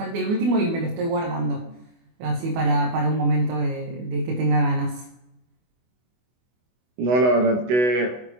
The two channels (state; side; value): late; left; 24 ms